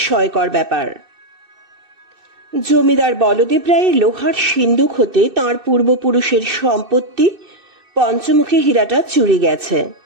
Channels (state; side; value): late; left; 2.6 ms